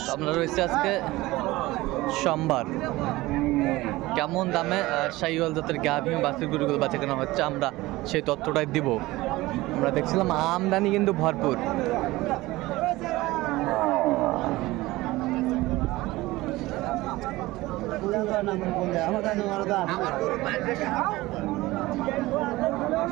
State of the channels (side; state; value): left; quieter; 19.2 dB